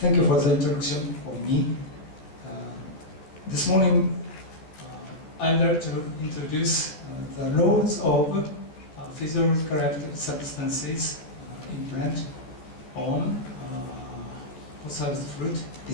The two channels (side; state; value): right; late; 13 ms